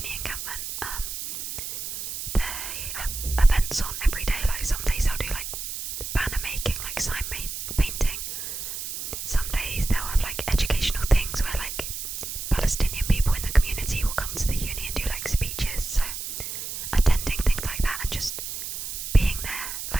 encampment, they have events on every day. Like, some days they'll do like banner making, like sign painting. Some days they'll have like educational things where like Palestinian people in the community will come to the uni and do like speeches. So attending things like that and just being there,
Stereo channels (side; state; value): right; noise; hiss, 6 dB below the sound